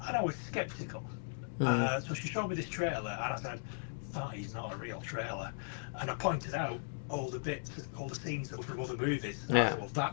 And I was sceptical. So she showed me this trailer, and I said, that is not a real trailer. And I pointed out all the bits, all the scenes that were from other movies. And I said, well,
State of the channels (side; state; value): right; silent; digital silence